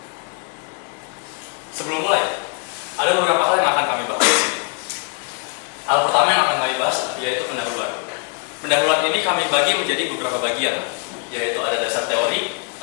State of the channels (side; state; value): right; quieter; 36.4 dB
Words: Sebelum mulai, ada beberapa hal yang akan kami bahas di sini. Hal pertama yang akan kami bahas yaitu pendahuluan. Pendahuluan ini kami bagi menjadi beberapa bagian, yaitu ada dasar teori,